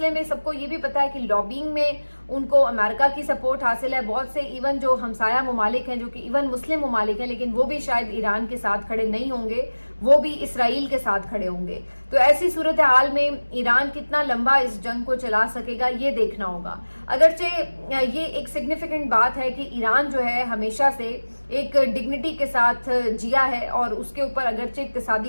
میں سب کو یہ بھی پتا ہے کہ لابینگ میں ان کو امریکہ کی سپورٹ حاصل ہے, بہت سے ایون جو ہمسایہ ممالک ہیں جو کہ ایون مسلم ممالک ہیں لیکن وہ بھی شاید ایران کے ساتھ کھڑے نہیں ہوں گے, وہ بھی اسرائیل کے ساتھ کھڑے ہوں گے. تو ایسی صورتحال میں ایران کتنا لمبا اس جنگ کو چلا سکے گا یہ دیکھنا ہوگا. اگرچہ یہ ایک سگنیفیکنٹ بات ہے کہ ایران جو ہے ہمیشہ سے ایک ڈگنیٹی کے ساتھ جیا ہے, اور اس کے اوپر اگرچہ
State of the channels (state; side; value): inverted; both; correlation -1.00